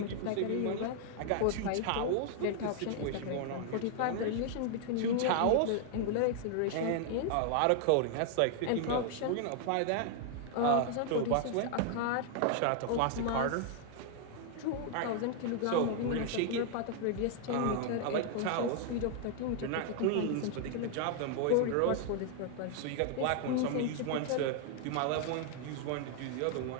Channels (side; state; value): both; different; correlation 0.00